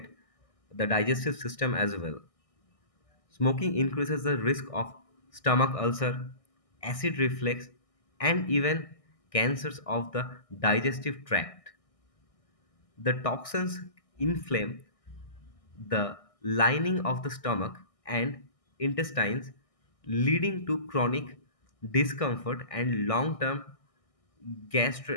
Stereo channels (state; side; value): late; right; 1.6 ms